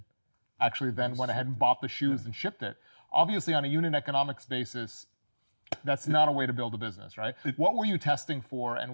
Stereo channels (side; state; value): both; inverted; correlation -1.00